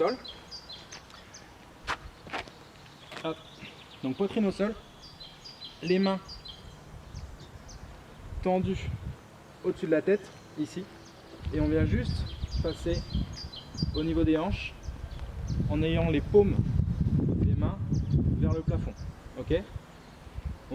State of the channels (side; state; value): both; identical; correlation 1.00